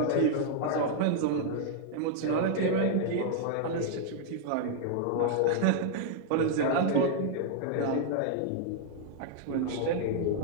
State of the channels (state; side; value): different; both; correlation 0.00